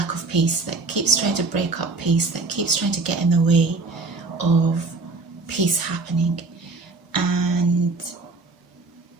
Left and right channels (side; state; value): left; quieter; 3.6 dB